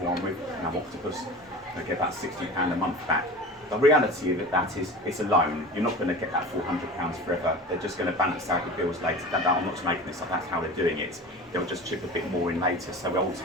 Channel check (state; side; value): normal; both; correlation 0.35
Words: one with Octopus. I get about £60 a month back. The reality of that is it's a loan. You're not going to get that £400 forever. They're just going to balance out the bills later. I'm not making this up, that's how they're doing it. They'll just chip a bit more in later, so we'll